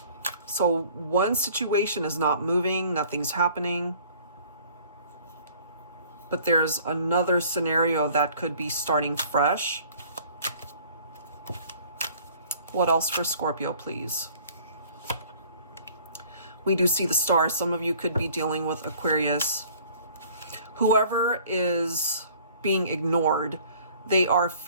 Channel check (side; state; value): both; inverted; correlation -0.53